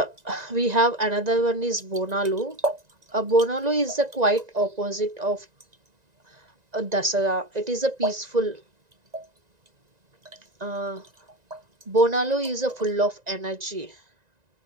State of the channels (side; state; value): left; late; 1.9 ms